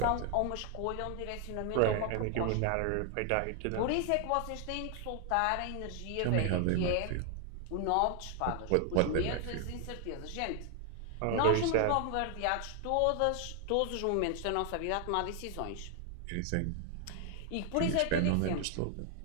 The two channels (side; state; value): both; different; correlation 0.00